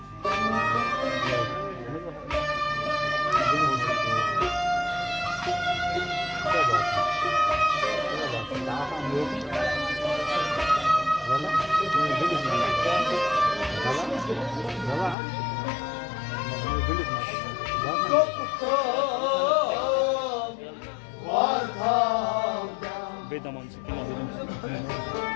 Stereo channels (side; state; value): right; drops out; at 15.2 s